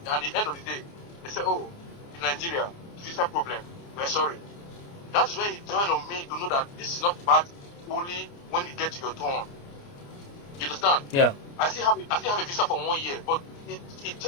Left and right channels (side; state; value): right; late; 29 ms